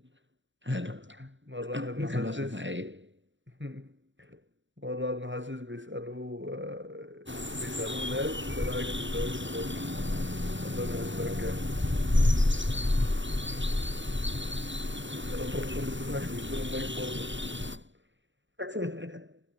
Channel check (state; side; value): late; left; 0.54 ms